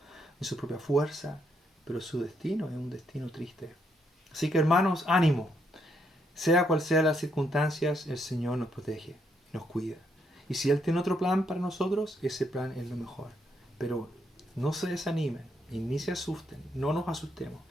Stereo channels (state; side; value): normal; both; correlation 0.75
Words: fuerza, pero su destino es un destino triste. Así que, hermanos, ánimo. Sea cual sea las circunstancias, el Señor nos protege, nos cuida. Y si Él tiene otro plan para nosotros, ese plan es lo mejor. Pero no se desanimen y ni se asusten, no nos asustemos,